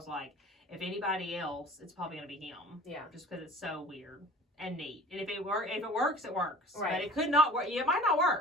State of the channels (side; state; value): both; normal; correlation 0.43